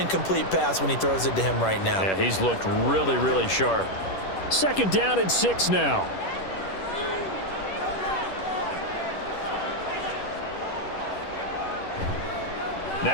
pass when he throws it to him right now. Yeah, he's looked really, really sharp. 2nd down and 6 now.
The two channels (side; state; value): right; late; 10 ms